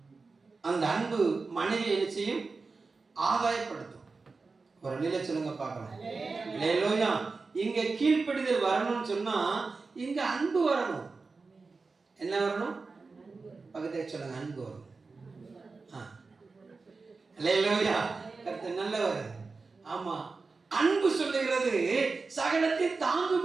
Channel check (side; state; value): left; quieter; 4.2 dB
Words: அந்த அன்பு மனைவி என்ன செய்யும்? ஆதாயப்படுத்தும். ஒரு அல்லேலூயா சொல்லுங்க பார்க்கலாம். அல்லேலூயா. இங்க கீழ்ப்படிதல் வரணும்னு சொன்னா இங்க அன்பு வரணும். என்ன வரணும்? பக்கத்துல சொல்லுங்க. அன்பு வரணும். அல்லேலூயா. கர்த்தர் நல்லவர். ஆமா, அன்பு சொல்லுகிறது சகலத்தை தாங்கும்